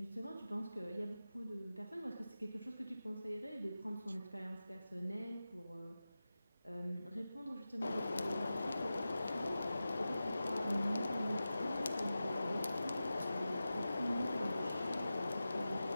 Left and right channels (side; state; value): both; inverted; correlation -0.94